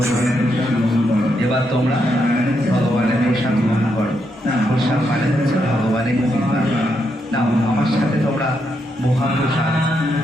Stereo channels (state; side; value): normal; both; correlation 0.80